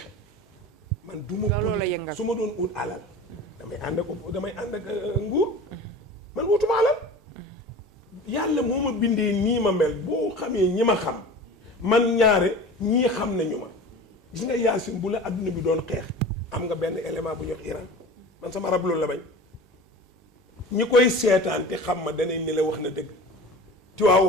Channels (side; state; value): both; normal; correlation 0.36